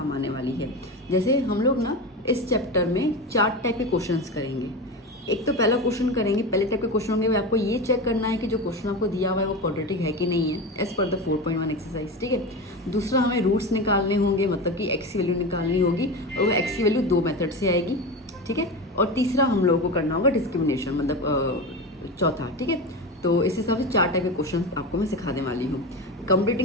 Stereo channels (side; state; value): both; normal; correlation 0.23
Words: आने वाली है। जैसे हम लोग ना इस चैप्टर में 4 टाइप के क्वेश्चंस करेंगे। एक तो पहला क्वेश्चन करेंगे, पहले टाइप के क्वेश्चन होंगे, आपको ये चेक करना है कि जो क्वेश्चन आपको दिया हुआ है वो क्वाड्रेटिक है कि नहीं है, एज पर द 4.1 एक्सरसाइज, ठीक है। दूसरा हमें रूट्स निकालने होंगे, मतलब कि एक्स की वैल्यू निकालनी होगी और वो एक्स की वैल्यू 2 मेथड से आएगी, ठीक है। और तीसरा हम लोगों को करना होगा डिस्क्रिमिनेशन, मतलब चौथा, ठीक है। तो इस हिसाब से 4 टाइप के क्वेश्चन आपको मैं सिखाने वाली हूँ।